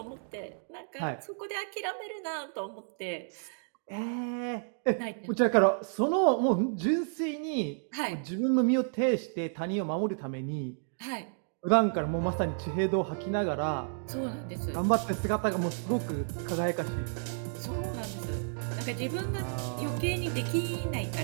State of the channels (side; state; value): left; silent; digital silence